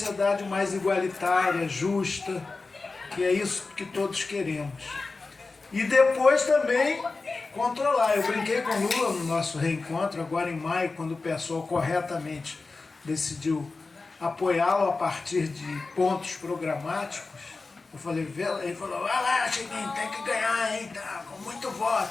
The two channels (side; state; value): right; quieter; 3.8 dB